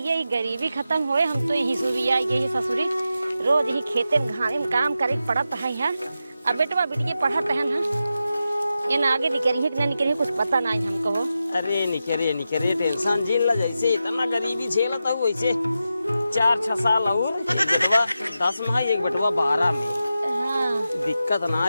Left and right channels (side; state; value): both; inverted; correlation -0.90